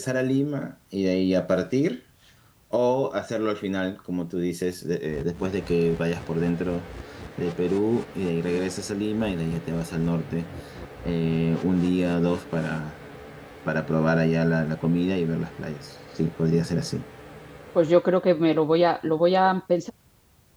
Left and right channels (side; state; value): both; identical; correlation 1.00